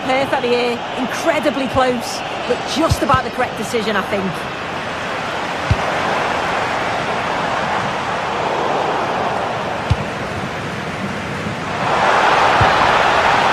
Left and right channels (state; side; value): identical; both; correlation 1.00